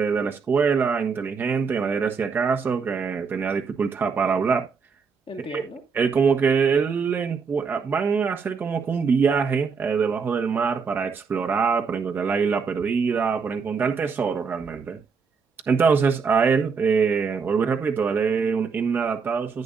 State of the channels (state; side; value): quieter; left; 5.5 dB